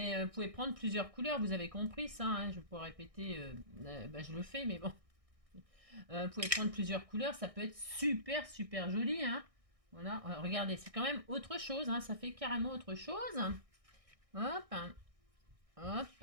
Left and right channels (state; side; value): late; left; 1.6 ms